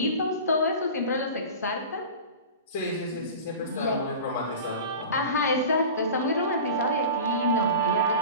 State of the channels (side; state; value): both; inverted; correlation -0.34